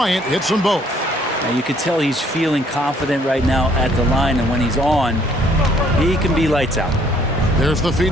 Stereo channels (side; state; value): both; normal; correlation 0.63